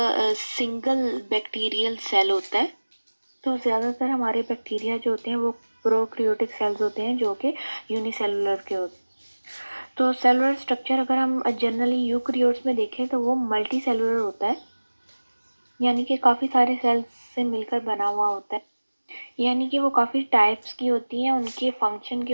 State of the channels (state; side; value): inverted; both; correlation -1.00